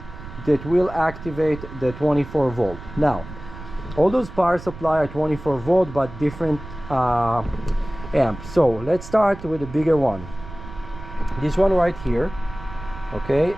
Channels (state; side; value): noise; right; rumble, 13 dB below the sound